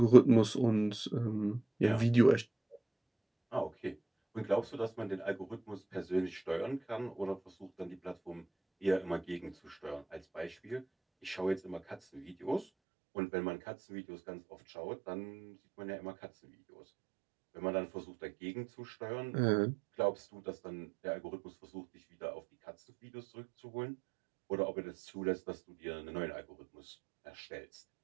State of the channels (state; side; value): drops out; left; at 12.7 s